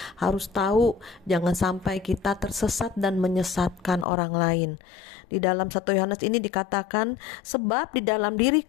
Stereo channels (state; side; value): drops out; right; at 4.0 s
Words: harus tahu jangan sampai kita tersesat dan menyesatkan orang lain. Di dalam 1 Yohanes ini dikatakan, sebab di dalam diri